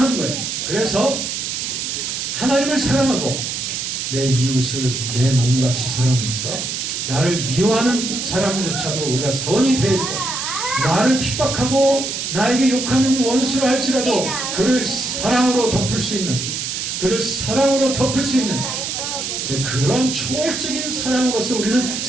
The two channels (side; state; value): right; noise; hiss, 3 dB below the sound